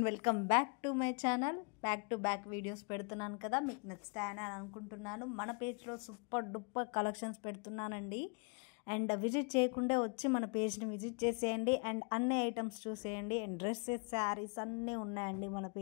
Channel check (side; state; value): right; quieter; 36.8 dB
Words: welcome back to my channel. Back to back videos పెడుతున్నాను కదా, మీకు నచ్చుతాయని అనుకుంటున్నాను. మన పేజ్లో సూపర్ డూపర్ కలెక్షన్స్ పెడుతున్నానండి. అండ్ విజిట్ చేయకుండా వచ్చి మన పేజ్ని విజిట్ చేసేయండి అండ్ అన్ని ఐటమ్స్ చూసేయండి. అండ్ డ్రెస్సెస్, శారీస్ అన్నీ ఉన్నాయండి మన